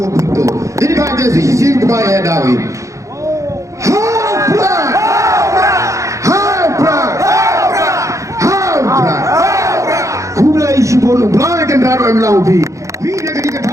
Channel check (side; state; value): left; late; 0.15 ms